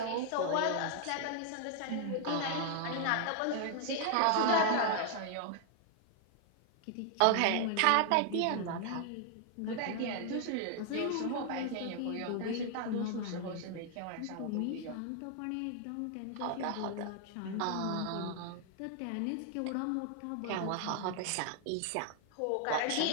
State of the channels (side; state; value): both; different; correlation 0.00